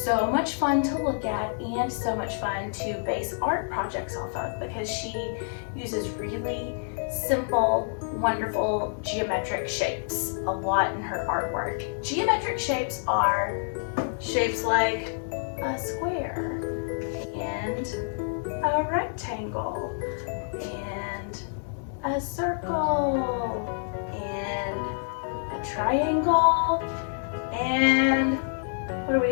so much fun to look at and so much fun to base art projects off of because she uses really simple, wonderful geometric shapes a lot in her artwork. Geometric shapes are shapes like a square and a rectangle and a circle and a triangle. And what do we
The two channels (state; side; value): silent; right; digital silence